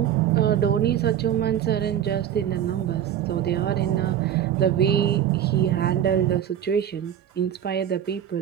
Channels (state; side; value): quieter; left; 10.1 dB